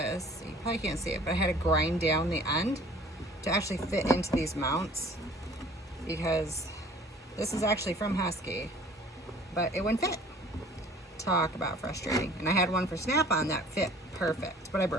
you probably can't see it, but I had to grind down the end to actually fit into these mounts, because this is actually from Husky, but it wouldn't fit. Talk about frustrating. And I had one for Snap-on that fit perfect, but I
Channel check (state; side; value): normal; both; correlation 0.50